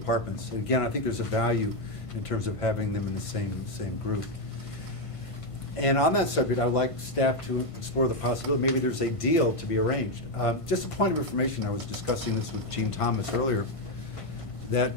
Again, I think there's a value in terms of having them in the same group. And on that subject, I would like staff to explore the possibility, maybe there's a deal to be arranged. Just a point of information, I was discussing this with Gene Thomas earlier, that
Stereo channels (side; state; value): right; late; 1.5 ms